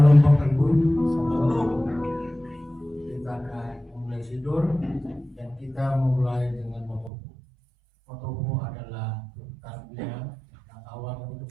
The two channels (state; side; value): drops out; left; at 7.1 s